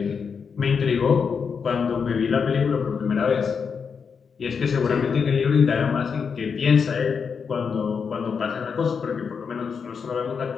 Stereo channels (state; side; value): quieter; right; 6.0 dB